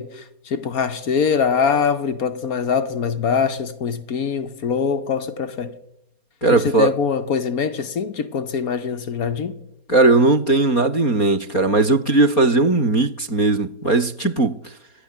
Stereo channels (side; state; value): right; late; 4.3 ms